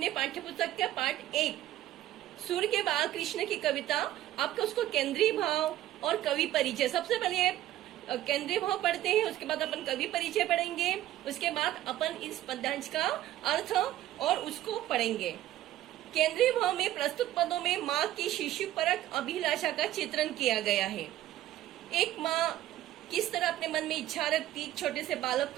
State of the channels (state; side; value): quieter; left; 13.8 dB